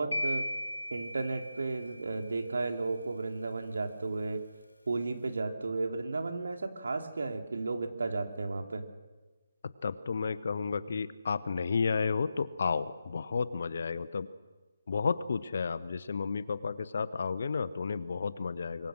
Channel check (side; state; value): both; inverted; correlation -0.88